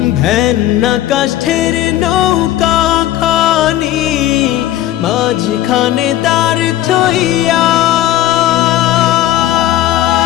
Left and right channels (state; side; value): quieter; right; 13.6 dB